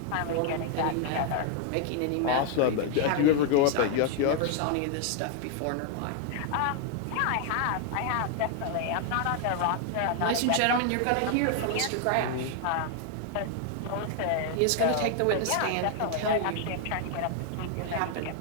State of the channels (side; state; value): both; different; correlation 0.00